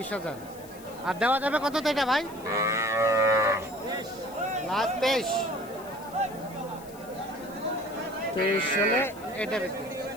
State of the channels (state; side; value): noise; left; hiss, 21 dB below the sound